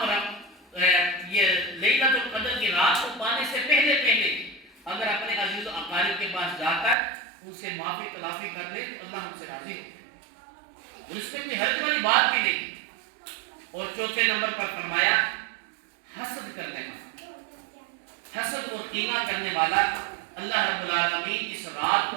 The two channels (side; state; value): left; drops out; at 7.0 s